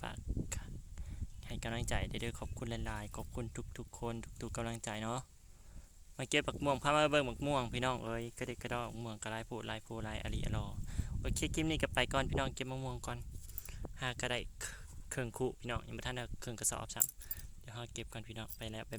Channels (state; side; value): identical; both; correlation 1.00